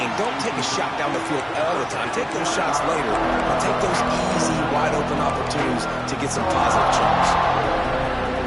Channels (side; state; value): both; identical; correlation 1.00